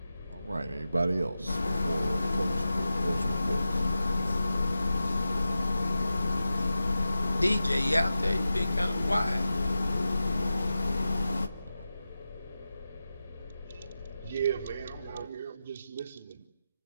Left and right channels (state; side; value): inverted; both; correlation -0.92